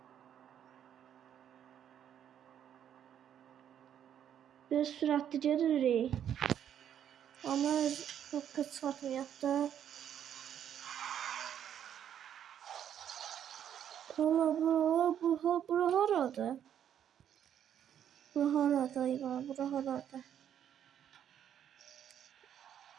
Biraz süratli gedirik. Ama çok kısmetmeyek da. Valla bura harada? Bura harada İvan? Bura harada?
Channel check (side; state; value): left; quieter; 9.6 dB